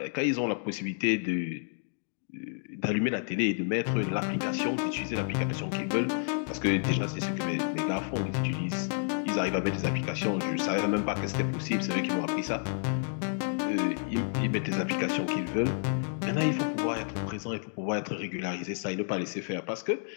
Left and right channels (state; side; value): silent; right; digital silence